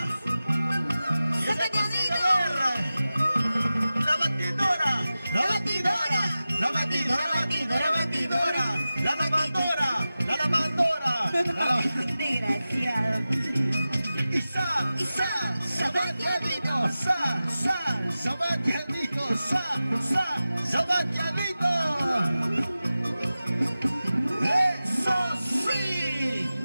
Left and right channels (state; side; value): inverted; both; correlation -0.95